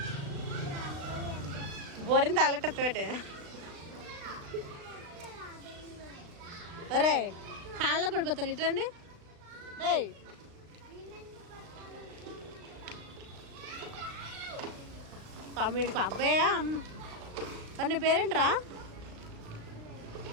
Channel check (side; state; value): left; late; 36 ms